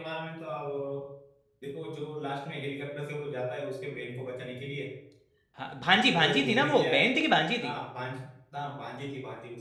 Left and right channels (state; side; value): identical; both; correlation 1.00